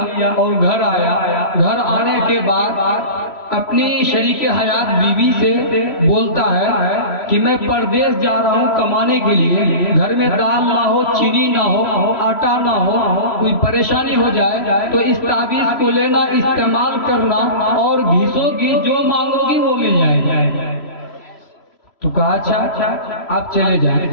और घर आया। घर आने के बाद अपनी शरीके हयात बीवी से बोलता है कि मैं परदेश जा रहा हूँ कमाने के लिए, घर में दाल ना हो, चीनी ना हो, आटा ना हो, कोई परेशानी हो जाए तो इस ताबीज को लेना, इस्तेमाल करना और घिसोगी जो मांगोगी वो मिल जाएगी। तो कहा अच्छा आप चले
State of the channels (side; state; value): right; late; 3.0 ms